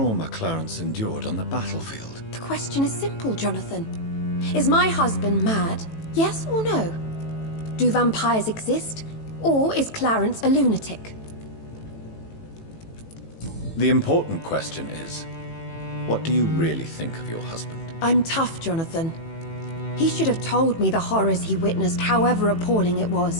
Clarence endured on the battlefield. The question is simple, Jonathan. Is my husband mad? Yes or no? Do vampires exist? Or is Clarence a lunatic? The important question is, what do you really think of your husband? I'm tough, Jonathan. He should have told me the horrors he witnessed, however appalling it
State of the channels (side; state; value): right; late; 18 ms